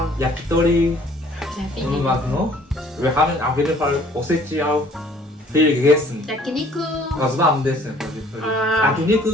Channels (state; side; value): normal; both; correlation 0.56